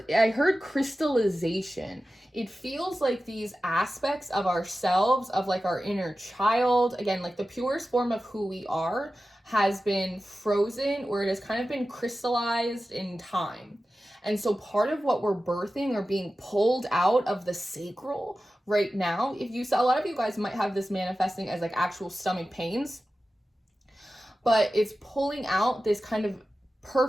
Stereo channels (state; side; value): normal; both; correlation 0.94